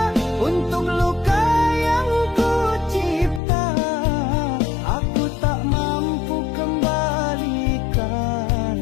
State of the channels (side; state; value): right; drops out; at 3.4 s